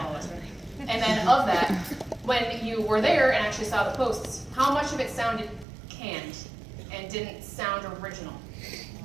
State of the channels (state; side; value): drops out; left; at 5.7 s